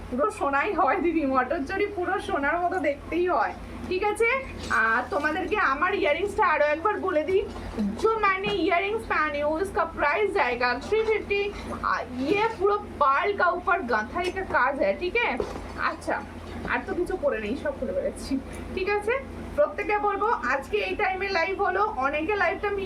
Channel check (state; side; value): identical; both; correlation 1.00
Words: সোনাই হয় দিদি, মটর চুড়ি পুরো সোনার মতো দেখতেই হয়, ঠিক আছে? তোমাদেরকে আমার ইয়ারিংসটা আরো একবার বলে দিই। जो मैंने इयरिंग्स पहने हो इसका प्राइस जाएगा 350। ये पूरा पार्ल का ऊपर गांथाई का काज है, ठीक है? अच्छा আর তো কিছু করে নেই, সব খুলে বেড়াচ্ছি, ঠিক আছে? প্রত্যেকে বলবো আজকে এই টাইমে লাইভ হলো, অনেকে লাইভটা